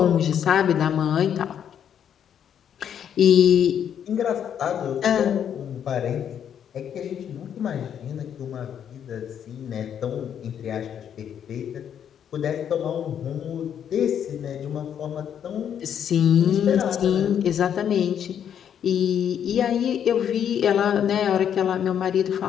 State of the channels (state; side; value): quieter; right; 8.9 dB